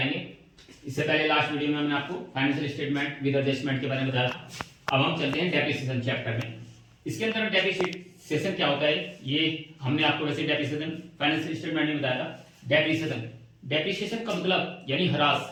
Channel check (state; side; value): identical; both; correlation 1.00